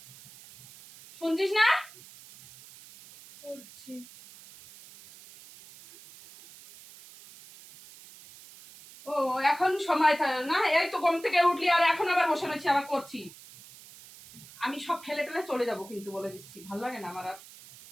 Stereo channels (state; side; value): noise; right; hiss, 20 dB below the sound